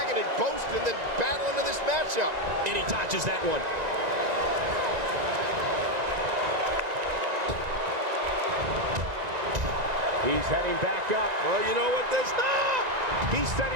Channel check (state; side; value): late; left; 1.9 ms